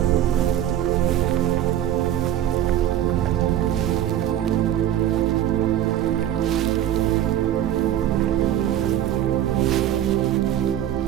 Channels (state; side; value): quieter; left; 11.5 dB